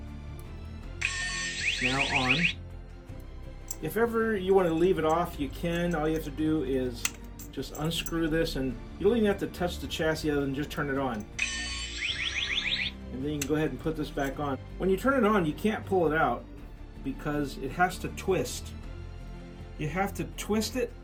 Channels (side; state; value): both; identical; correlation 1.00